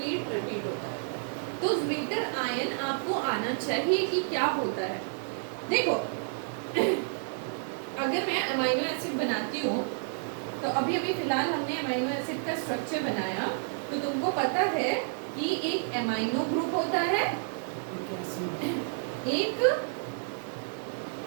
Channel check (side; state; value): left; silent; 58 dB below the other